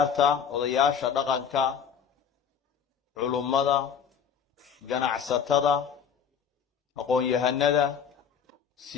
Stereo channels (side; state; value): right; quieter; 7.2 dB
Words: وضياشا دقنكا علمدا جنعستدا أقول يهندا